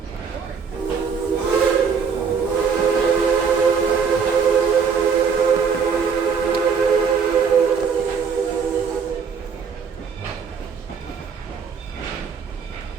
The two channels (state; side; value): quieter; left; 6.1 dB